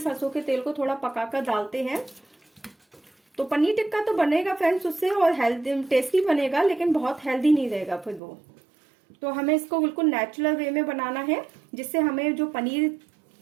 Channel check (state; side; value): drops out; left; at 8.2 s